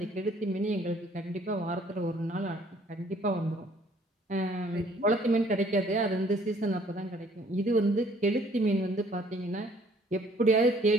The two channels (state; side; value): normal; both; correlation 0.60